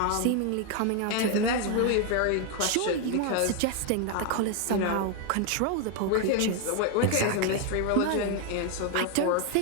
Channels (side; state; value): both; different; correlation 0.01